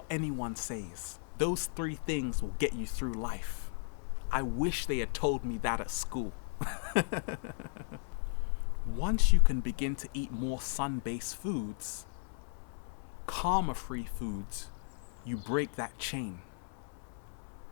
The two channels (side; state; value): right; silent; 54 dB below the other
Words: anyone says. Those 3 things will get you through life. I wish they had told me that at school. Once you can begin to eat more sun-based foods, karma-free foods, you break that chain.